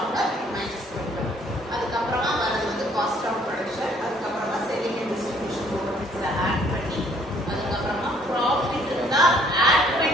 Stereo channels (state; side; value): normal; both; correlation 0.62